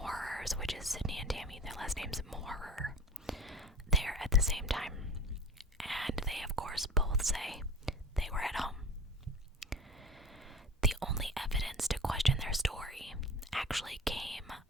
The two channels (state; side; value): normal; both; correlation 0.37